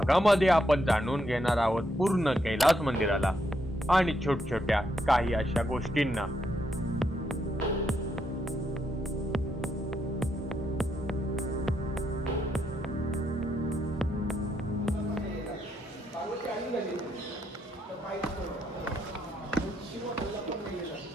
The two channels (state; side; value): normal; both; correlation 0.78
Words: आपण जाणून घेणार आहोत पूर्ण कैलास मंदिराला आणि छोट्या काही अशा गोष्टींना।